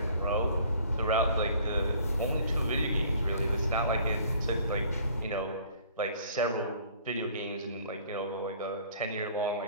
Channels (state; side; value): inverted; both; correlation -0.54